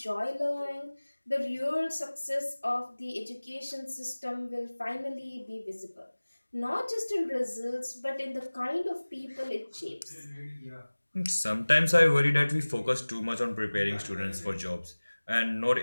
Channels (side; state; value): both; inverted; correlation -1.00